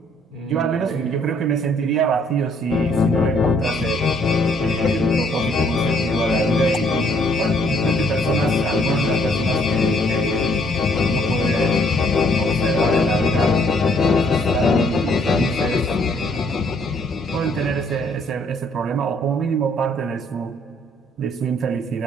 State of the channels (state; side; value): normal; both; correlation 0.65